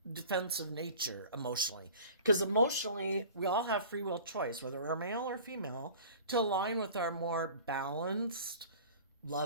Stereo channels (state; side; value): inverted; both; correlation -0.43